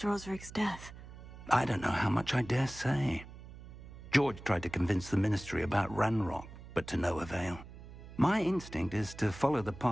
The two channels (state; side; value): noise; right; hum, 15 dB below the sound